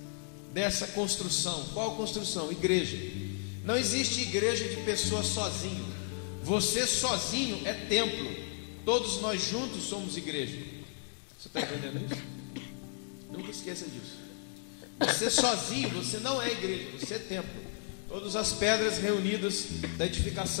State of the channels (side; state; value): right; silent; 55 dB below the other